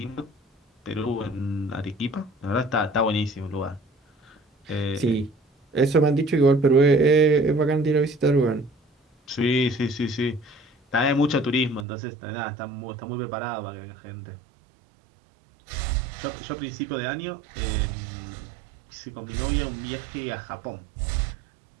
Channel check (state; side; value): drops out; left; at 11.9 s